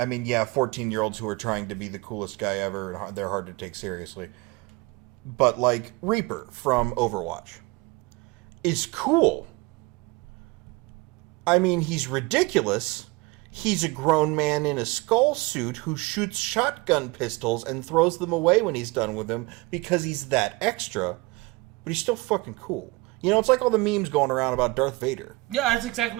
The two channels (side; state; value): left; quieter; 23.8 dB